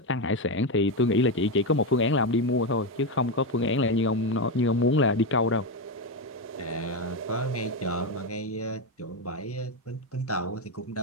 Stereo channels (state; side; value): normal; both; correlation 0.10